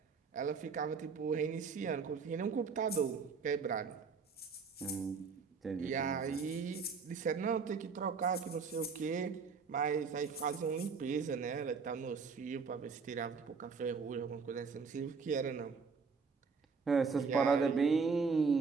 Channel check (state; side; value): quieter; left; 5.2 dB